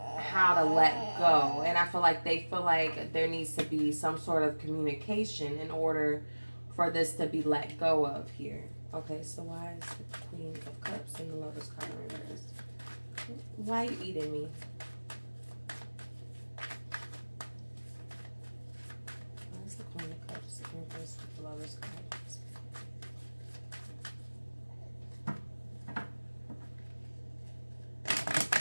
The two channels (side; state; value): both; inverted; correlation -1.00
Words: how to let go. And I feel like they feel like there needs to be some sort of communication in order for this to be let go of here. Okay, so why is the Queen of Cups and the Lover's card in reverse? Why are you eating me? Why is the Queen of Cups in reverse with the Lover's card?